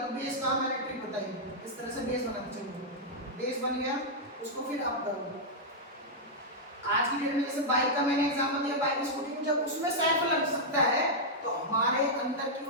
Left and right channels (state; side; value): normal; both; correlation -0.06